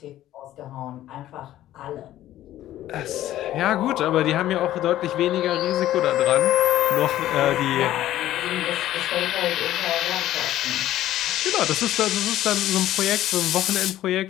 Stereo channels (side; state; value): right; quieter; 13.6 dB